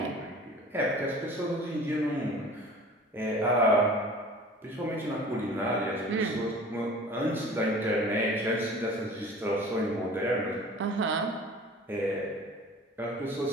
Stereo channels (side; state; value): both; normal; correlation 0.43